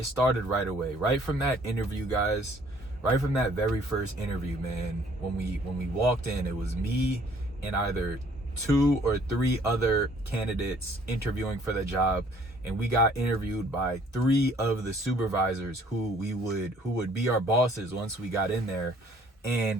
started right away, right from that interview, guys. Right from that very first interview, man. When we walked in, it was me and either 2 or 3 other candidates interviewing for the job, and we got interviewed by 3 of the supervisors who would be our bosses once we got in there.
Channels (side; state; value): both; normal; correlation 0.59